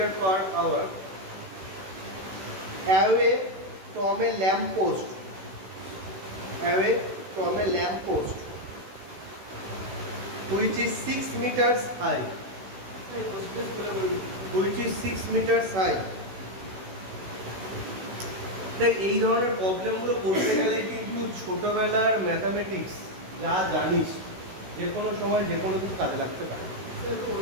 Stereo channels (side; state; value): left; late; 16 ms